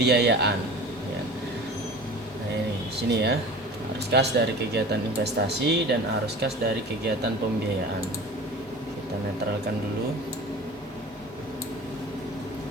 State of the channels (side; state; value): both; normal; correlation 0.39